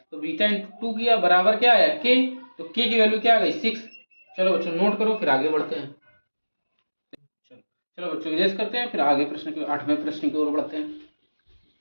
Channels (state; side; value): inverted; both; correlation -1.00